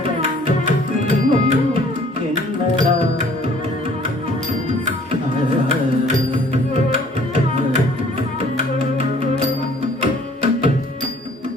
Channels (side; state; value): both; normal; correlation 0.56